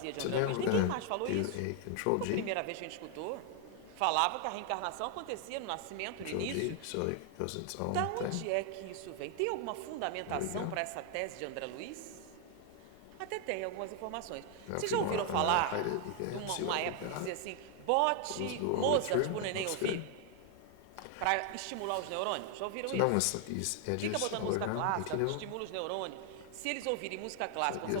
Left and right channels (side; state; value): both; different; correlation 0.01